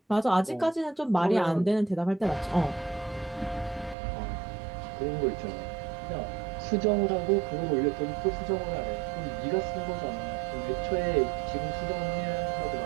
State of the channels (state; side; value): drops out; left; at 4.0 s